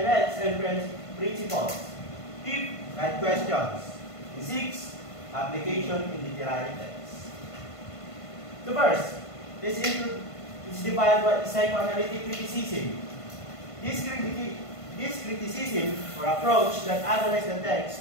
and principles. Fifth, guide questions. And sixth, application in literary text. So first, this is defined by psychoanalytic criticism. This criticism or approach that analyzes the text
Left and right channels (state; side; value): late; right; 1.5 ms